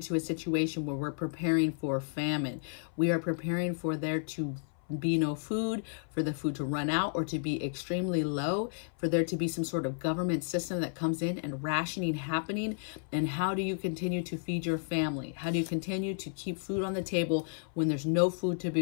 a situation where we're preparing for famine? We are preparing for there to be no food, for the food to run out or to be extremely low, for there to be some sort of government system that comes in and rationing happening. And how do you continue to feed your family? How do you continue to keep food on the table when there's no food to be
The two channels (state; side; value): silent; right; 56 dB below the other